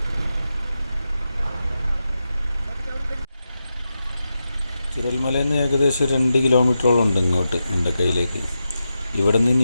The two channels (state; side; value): inverted; both; correlation -0.89